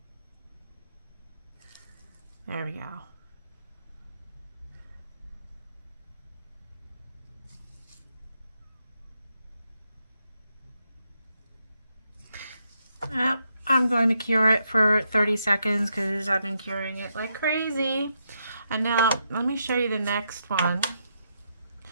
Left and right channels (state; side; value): inverted; both; correlation -0.81